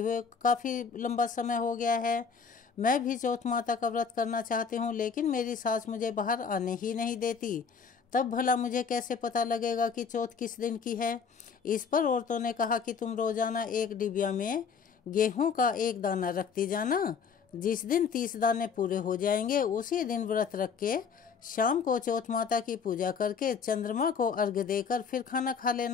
काफी लंबा समय हो गया है, मैं भी चौथ माता का व्रत करना चाहती हूँ, लेकिन मेरी सास मुझे बाहर आने ही नहीं देती, तब भला मुझे कैसे पता लगेगा कि चौथ किस दिन की है। इस पर औरतों ने कहा कि तुम रोजाना एक डिबिया में गेहूं का एक दाना रखती जाना, जिस दिन 30 दाने पूरे हो जाएंगे उसी दिन व्रत रख के शाम को चौथ माता की पूजा करके चंद्रमा को अर्घ्य देकर फिर खाना खा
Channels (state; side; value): quieter; right; 6.0 dB